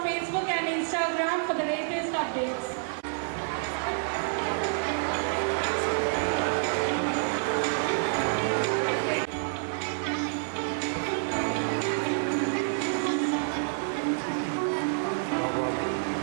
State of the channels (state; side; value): silent; left; 59 dB below the other